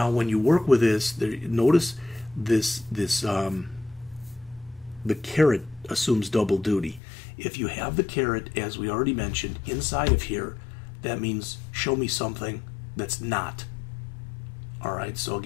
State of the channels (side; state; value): right; drops out; at 7.0 s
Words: when you work with this, notice the caret assumes double duty. If you have the caret, as we already mentioned, inside of here, that means show me something that's not. All right, so